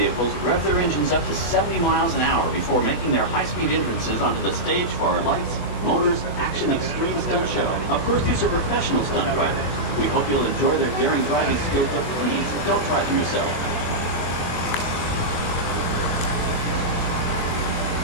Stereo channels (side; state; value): right; late; 23 ms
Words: rev their engines up to 70 miles an hour before making their high-speed entrances onto the stage for our lights, motors, action extreme stunt show. Of course, these are professional stunt drivers. We hope you'll enjoy their daring driving skills, but please, don't try them yourself.